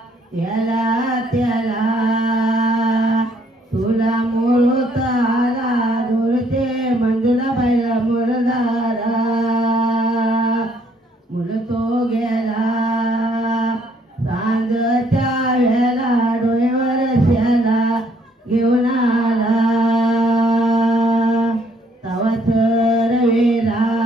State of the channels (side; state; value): both; normal; correlation 0.66